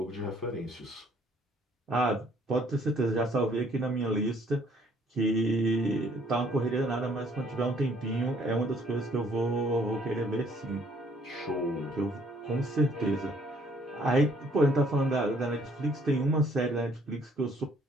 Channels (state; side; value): normal; both; correlation 0.62